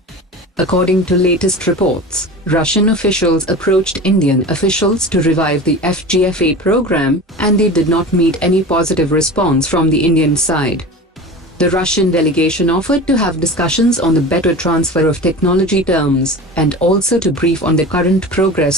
According to latest reports, Russian officials approached Indian officials to revive the FGFA program, and they did not meet any positive response from the Indian side. The Russian delegation offered to have discussions on the better transfer of technology terms, and also to brief on the current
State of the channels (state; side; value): normal; both; correlation 0.33